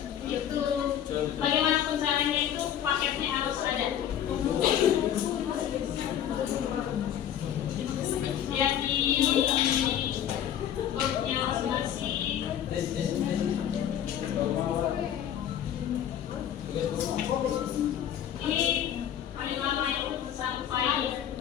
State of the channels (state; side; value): quieter; right; 10.1 dB